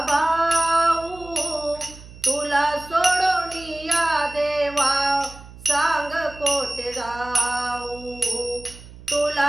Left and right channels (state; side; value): noise; right; hum, 18 dB below the sound